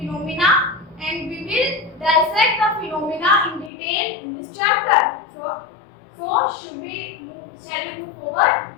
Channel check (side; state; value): right; drops out; at 3.7 s